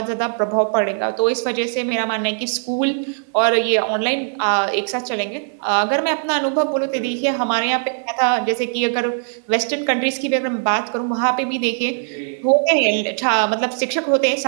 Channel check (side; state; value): left; silent; 64 dB below the other